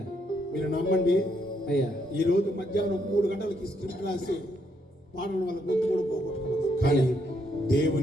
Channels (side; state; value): both; normal; correlation 0.75